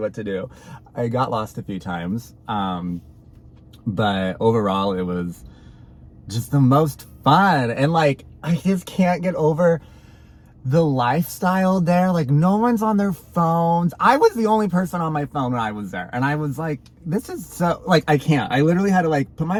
to do. I got lost a few times, but overall it was just the most fun. And like, I just can't get over the lifestyle there. Like no one's on their phones. I was the only person on my phone when I was there, and I was like, this is so like, I can't. I literally had to like put my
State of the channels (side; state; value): both; identical; correlation 1.00